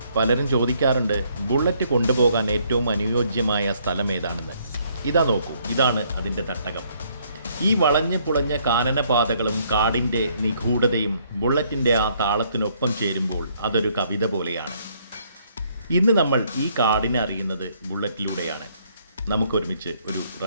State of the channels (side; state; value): both; inverted; correlation -0.67